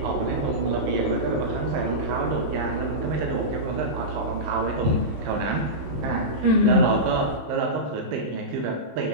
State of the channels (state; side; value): late; left; 16 ms